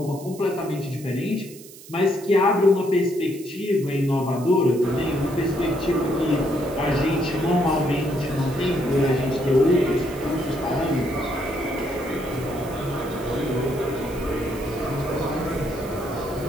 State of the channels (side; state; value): right; noise; hiss, 19 dB below the sound